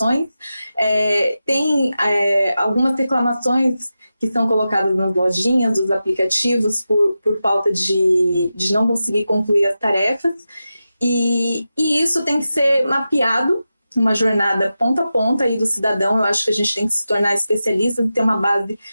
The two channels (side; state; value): both; inverted; correlation -0.92